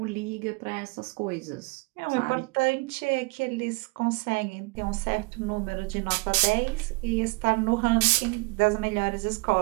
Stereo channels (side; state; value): left; quieter; 27.4 dB